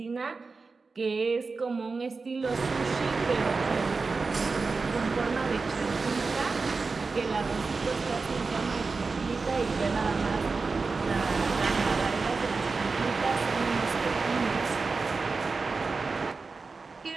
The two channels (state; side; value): quieter; left; 4.3 dB